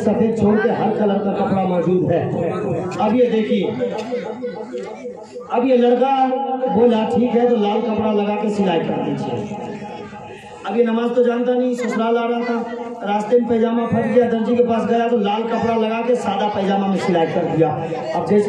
छोड़ के हर कलर का कपड़ा मौजूद है। अब ये देखिए, अब ये लड़का बोला ठीक है तो लाल कपड़ा लगा के सिलाई कर दीजिए। अब ये नमाज तो जानता नहीं, ससुराल आ रहा था, रास्ते में पैजामा फट गया, दर्जी के पास गया तो लाल कपड़ा लगा के सादा पैजामा में सिलाई कर दिया। अब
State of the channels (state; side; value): identical; both; correlation 1.00